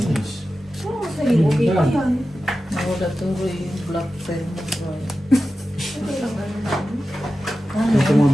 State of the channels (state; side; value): normal; both; correlation 0.93